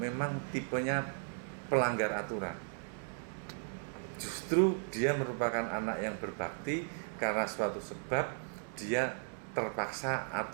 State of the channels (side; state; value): left; silent; 54 dB below the other